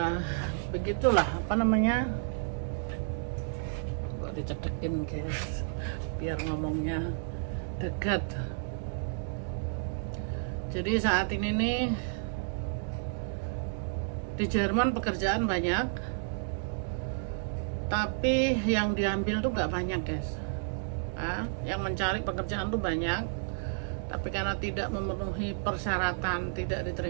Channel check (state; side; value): silent; left; digital silence